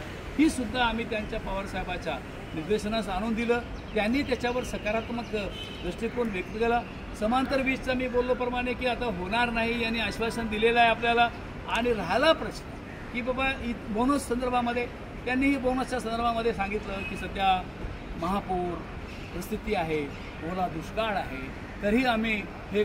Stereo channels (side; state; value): both; identical; correlation 1.00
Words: ही सुद्धा आम्ही त्यांच्या पवारसाहेबाच्या निर्देशनास आणून दिलं. त्यांनी त्याच्यावर सकारात्मक दृष्टिकोन व्यक्त केला. समांतर वीजचा मी बोललोप्रमाणे की आता होणार नाही यांनी आश्वासन दिलेलं आहे आपल्याला. आणि राहिला प्रश्न की बाबा बोनस संदर्भामध्ये त्यांनीही बोनसच्या संदर्भामध्ये सांगितलं की सध्या महापूर परिस्थिती आहे, ओला दुष्काळ आहे, तरीही आम्ही हे